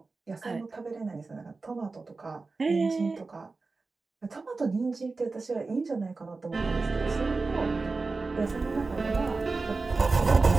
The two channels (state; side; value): quieter; left; 3.9 dB